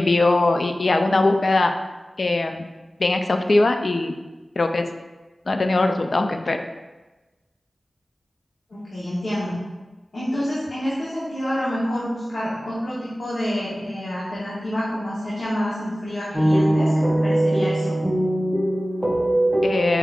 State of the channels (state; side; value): normal; both; correlation 0.96